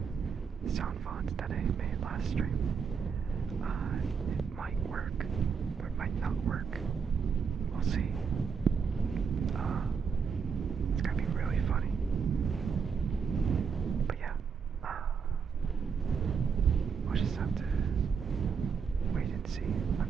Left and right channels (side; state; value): left; quieter; 6.1 dB